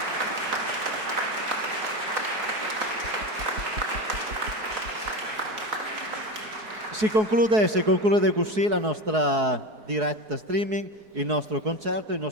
Si conclude così la nostra diretta streaming, il nostro concerto, il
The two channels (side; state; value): left; late; 4.7 ms